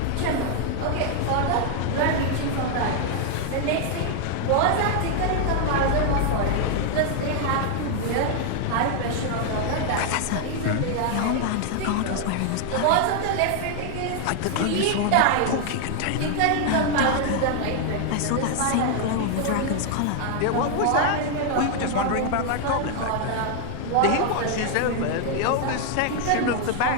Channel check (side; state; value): both; different; correlation 0.00